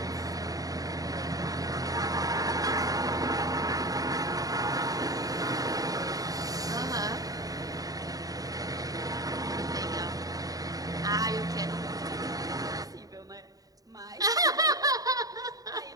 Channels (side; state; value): left; late; 0.18 ms